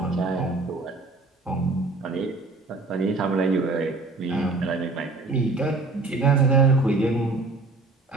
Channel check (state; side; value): quieter; left; 3.5 dB